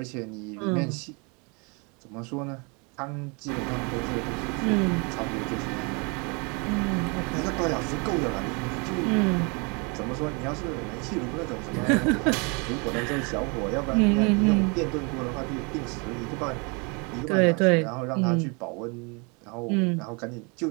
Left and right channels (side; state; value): left; quieter; 31.9 dB